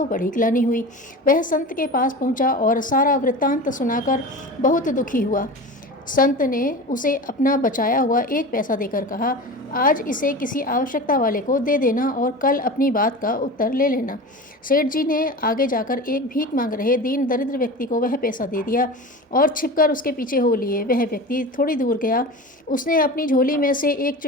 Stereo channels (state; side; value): normal; both; correlation 0.31